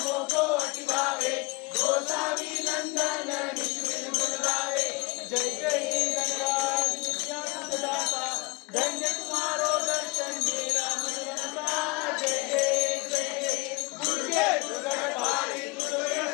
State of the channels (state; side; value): quieter; right; 26.5 dB